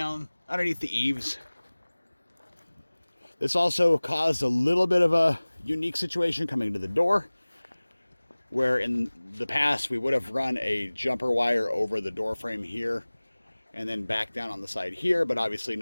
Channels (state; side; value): inverted; both; correlation -1.00